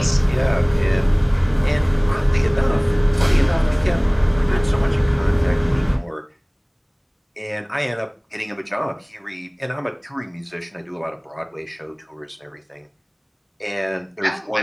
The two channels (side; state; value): both; identical; correlation 1.00